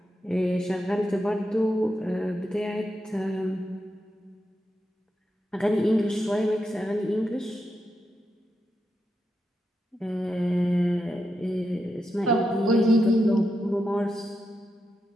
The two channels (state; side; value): normal; both; correlation 0.86